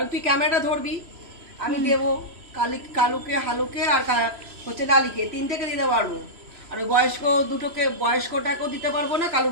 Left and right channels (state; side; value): late; left; 3.0 ms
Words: তুই ক্যামেরাটা ধরবি, আমি দেবো কালুকে হালুকে আর হচ্ছে লালিকে, তিনটেকে দিতে পারবো। আর ওই বয়স্ক দুটোকে, বয়স্কটাকেও দিতে পারবো না,